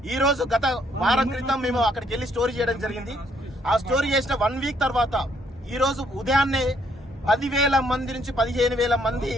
ఈ రోజు గత వారం క్రితం మేము అక్కడికి వెళ్లి స్టోరీ చేయడం జరిగింది. ఆ స్టోరీ చేసిన 1 వీక్ తర్వాత ఈ రోజు ఉదయాన్నే 10,000 మంది నుంచి 15,000 మంది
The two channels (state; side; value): normal; both; correlation 0.68